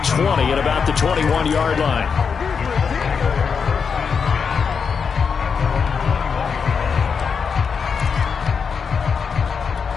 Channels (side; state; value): right; quieter; 6.0 dB